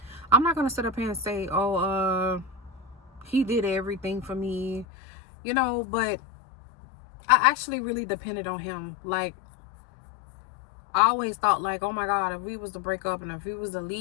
I'm not going to sit up here and say, He did everything for me, but I actually really depended on Him. Like, I always thought, like, oh my God, if we was to break up and if we was to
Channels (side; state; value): right; drops out; at 4.9 s